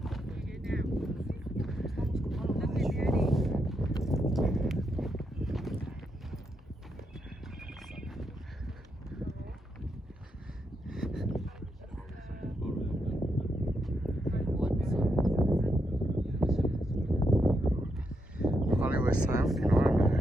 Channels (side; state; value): both; normal; correlation 0.81